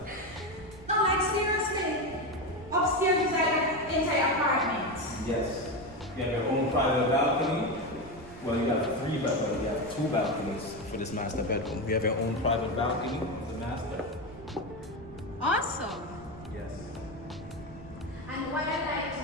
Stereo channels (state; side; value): noise; right; rumble, 18 dB below the sound